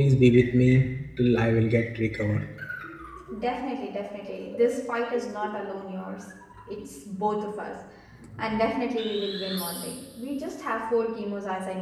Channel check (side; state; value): both; identical; correlation 1.00